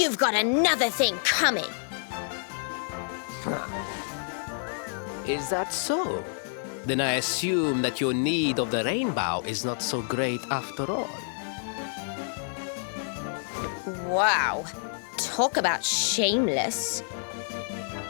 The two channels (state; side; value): silent; right; 59 dB below the other